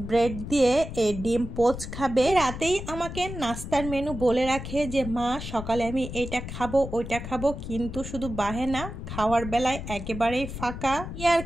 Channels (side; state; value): left; noise; rumble, 8 dB below the sound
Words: ব্রেড দিয়ে এই ডিম পোচ খাবে। রাতেই আমাকে নাস্তার মেনু বলে রাখে যে মা সকালে আমি এটা খাবো ওইটা খাবো, কিন্তু শুধু বাহেনা, খাওয়ার বেলায় একেবারেই ফাঁকা। ইয়ার